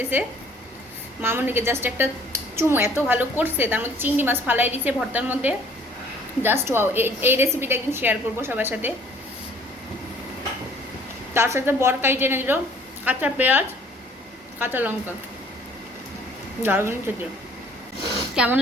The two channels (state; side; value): normal; both; correlation 0.56